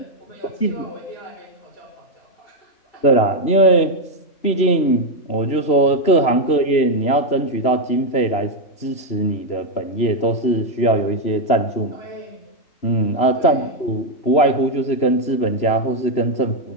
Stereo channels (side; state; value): right; late; 3.0 ms